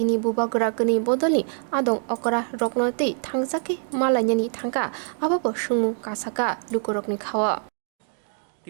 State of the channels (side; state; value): left; silent; 62 dB below the other